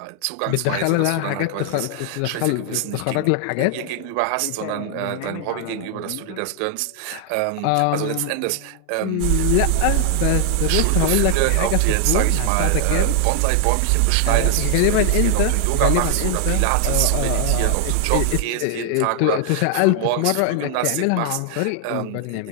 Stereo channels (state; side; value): different; both; correlation 0.00